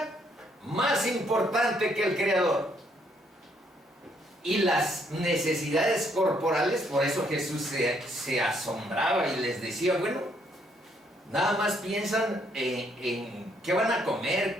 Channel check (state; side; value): normal; both; correlation 0.70